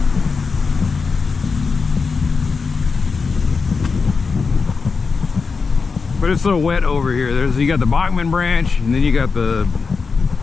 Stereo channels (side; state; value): right; quieter; 4.8 dB